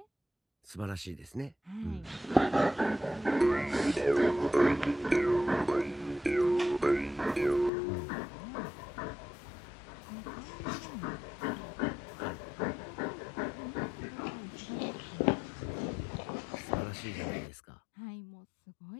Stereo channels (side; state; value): right; drops out; at 7.7 s